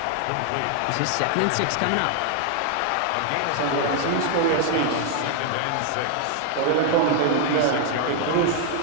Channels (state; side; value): different; both; correlation 0.00